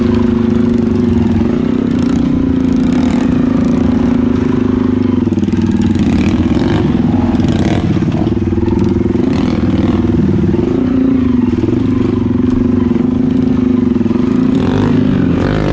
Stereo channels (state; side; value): identical; both; correlation 1.00